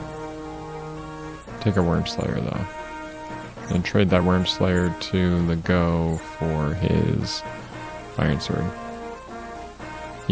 Take a worm slayer, though. And trade that worm slayer to the go for his iron sword.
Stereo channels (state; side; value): identical; both; correlation 1.00